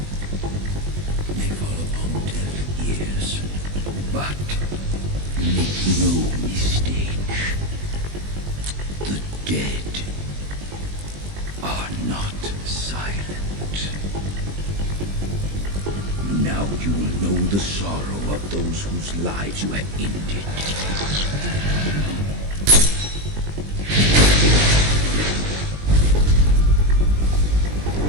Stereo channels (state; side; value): late; left; 20 ms